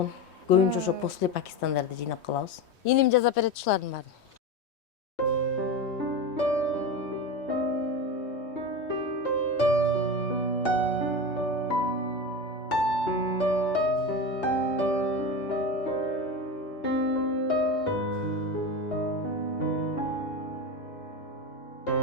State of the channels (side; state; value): right; late; 3.1 ms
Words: Көбүнчө ошо после Пакистандарды жыйнап калабыз. Энем жазап берет ушулардын баарын.